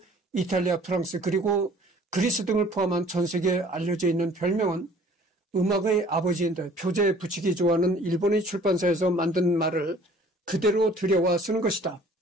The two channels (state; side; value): normal; both; correlation 0.53